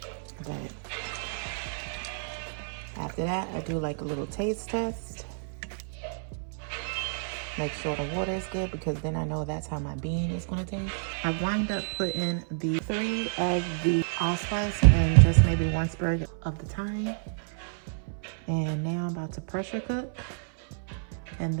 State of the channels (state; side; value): silent; left; 58 dB below the other